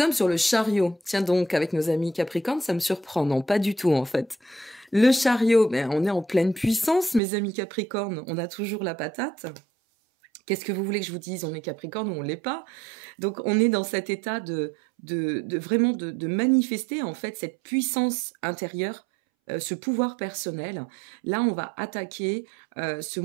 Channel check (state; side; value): drops out; left; at 7.2 s